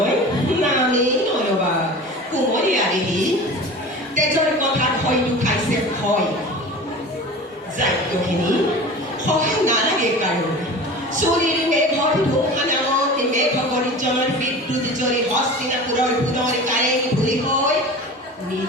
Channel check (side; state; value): both; normal; correlation 0.36